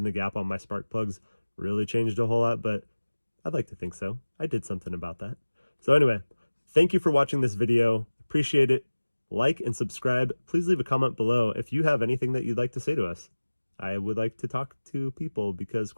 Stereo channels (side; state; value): both; inverted; correlation -1.00